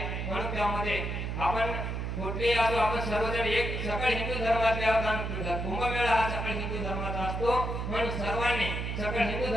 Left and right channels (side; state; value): right; noise; hum, 3 dB below the sound